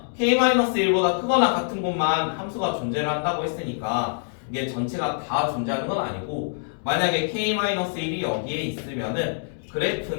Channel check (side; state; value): right; silent; digital silence